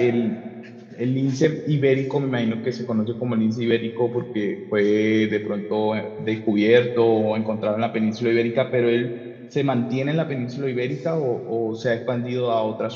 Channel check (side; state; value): both; identical; correlation 1.00